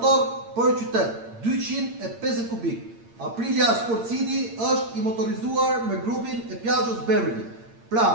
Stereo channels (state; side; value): late; left; 8.8 ms